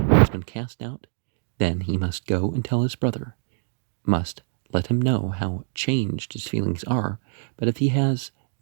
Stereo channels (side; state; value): left; silent; digital silence